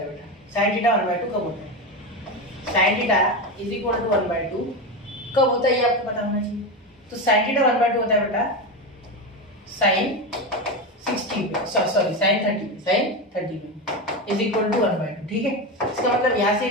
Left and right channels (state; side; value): normal; both; correlation 0.17